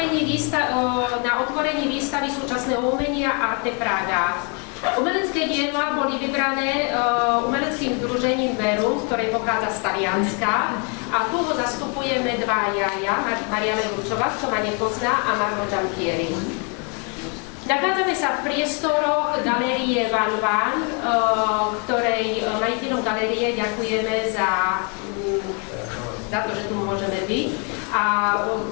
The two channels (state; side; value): quieter; right; 36.7 dB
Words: výstavy súčasného umenia Arte Praha. Umelecké diela boli vybrané umeleckým združením Verum, ktoré pochádza z Talianska. A tu ho zastupujeme dvaja, Mariana Ručová, kto ma nepozná, a Marmo Giampieri. Nachádzame Nachádzame sa v priestoroch galérie Van Van, ktorej majiteľom galérie ďakujeme za to, že tu môžeme byť. A